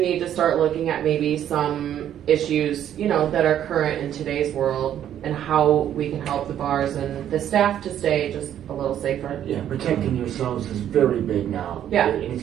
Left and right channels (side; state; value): left; quieter; 10.5 dB